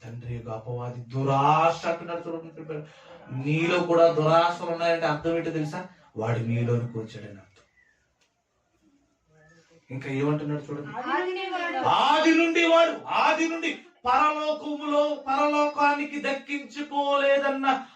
తండ్రి యొక్క అపవాది దురాశ అంటున్నాడు. చూడండి, నీలో కూడా దురాశలు ఉన్నాయంటే అర్థం ఏంటో తెలుసా? వాడు నీలోనికి వచ్చాడని అర్థం. ఇంకా ఏమంటున్నాడు చూడండి, ఆది నుండి పరలోకానికి దక్కించుకోలేదన్న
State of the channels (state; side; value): identical; both; correlation 1.00